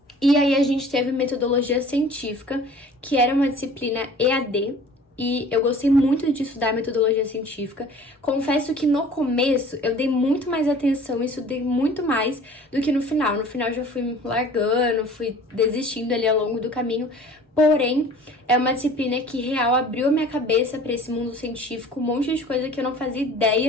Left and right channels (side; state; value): both; normal; correlation 0.47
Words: E aí a gente teve metodologia científica, que era uma disciplina EAD, e eu gostei muito de estudar metodologia científica. Confesso que no começo eu dei muito mais atenção e estudei muito mais do que no final. No final eu já fui largando, fui desistindo ali ao longo do caminho. Porém, é uma disciplina que real abriu a minha cabeça para esse mundo científico, um monte de coisa que eu não fazia